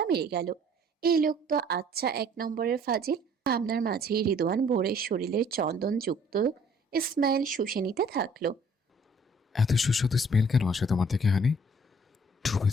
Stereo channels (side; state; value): both; normal; correlation 0.57